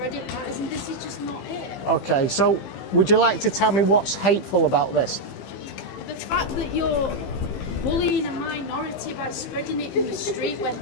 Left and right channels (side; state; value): right; late; 15 ms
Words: it matters, and this is just not it. Okay, so would you like to tell me what's hateful about this? The fact that you're bullying a minority by spreading it in the street when,